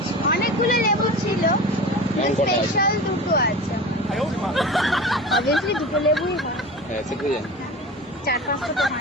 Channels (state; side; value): normal; both; correlation 0.33